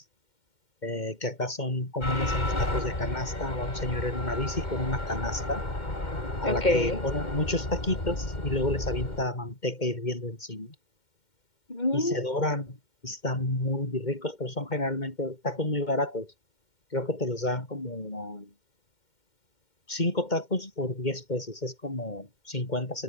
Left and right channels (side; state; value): right; late; 2.1 ms